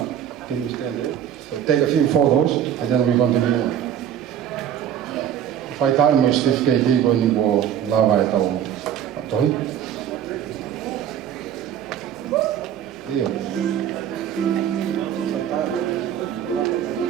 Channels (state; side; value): quieter; left; 9.8 dB